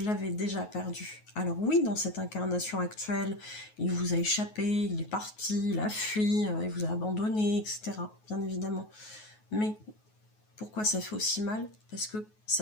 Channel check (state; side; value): late; right; 9.4 ms